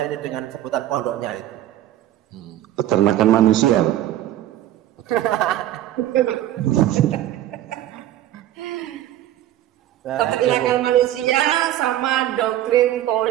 ini dengan sebutan pondoknya itu? Peternakan manusia. Peternakan manusia sama doktrin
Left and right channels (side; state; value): left; quieter; 13.1 dB